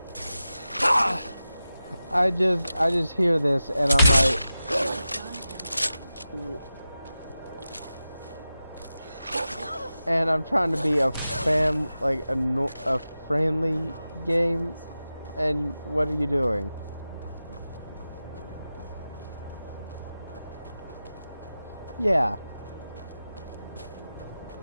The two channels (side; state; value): both; inverted; correlation -0.93